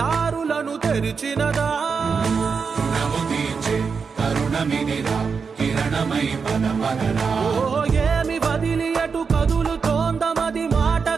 తెరిచినదా రుణము తీర్చే కరుణమిదిరా కిరణమై పద పదరా ఓ ఏమి వదిలి అటు కదులుతోందమది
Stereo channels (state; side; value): quieter; left; 5.5 dB